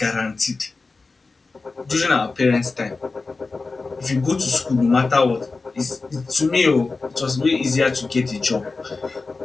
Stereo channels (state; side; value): quieter; right; 3.9 dB